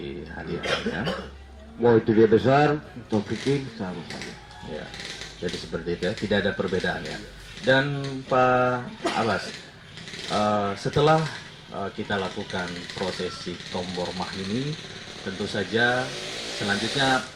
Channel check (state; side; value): identical; both; correlation 1.00